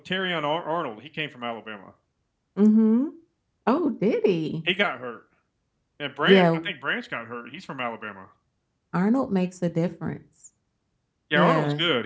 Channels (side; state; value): both; identical; correlation 1.00